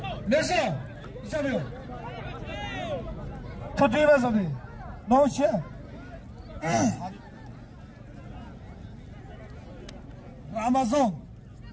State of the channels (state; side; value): identical; both; correlation 1.00